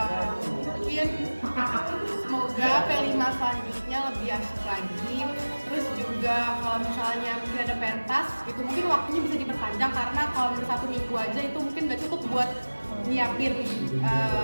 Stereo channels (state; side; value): inverted; both; correlation -1.00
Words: Mungkin semoga P5 selanjutnya lebih asik lagi. Terus juga kalau misalnya mungkin ada pentas gitu, mungkin waktunya bisa diperpanjang, karena kalau misalnya 1 minggu aja itu mungkin nggak cukup buat nyiapin